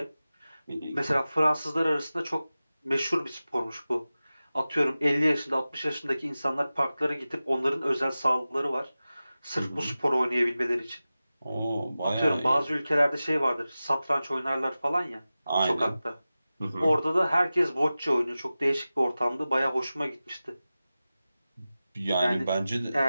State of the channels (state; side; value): inverted; both; correlation -0.95